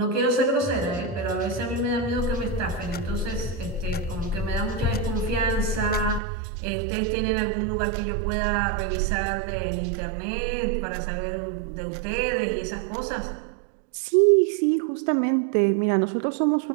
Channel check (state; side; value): drops out; left; at 6.2 s